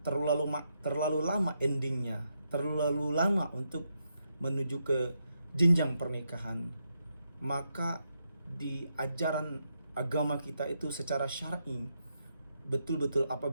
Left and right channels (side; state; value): both; inverted; correlation -0.81